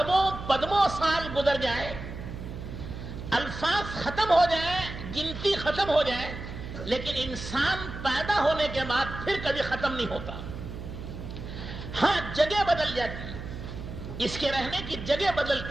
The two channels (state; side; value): noise; right; hum, 9 dB below the sound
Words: پدموں سال گزر جائے، الفاظ ختم ہو جائے، گنتی ختم ہو جائے، لیکن انسان پیدا ہونے کے بعد پھر کبھی ختم نہیں ہوتا۔ ہاں، جگہ بدل جاتی ہے، اس کے رہنے کی جگہ